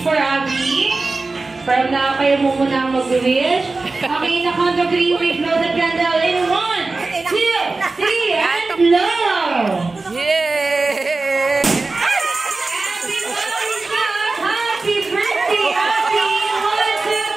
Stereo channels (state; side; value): quieter; left; 3.6 dB